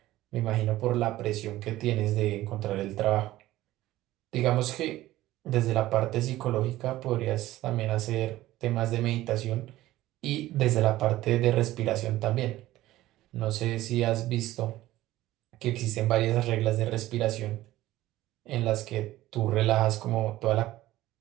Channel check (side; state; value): left; quieter; 15.9 dB